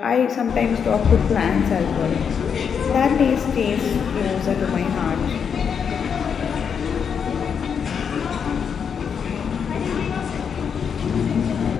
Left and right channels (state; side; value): quieter; right; 7.0 dB